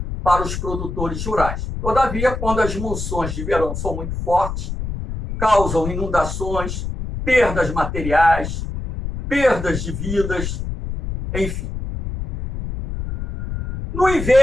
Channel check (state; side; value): noise; left; rumble, 5 dB below the sound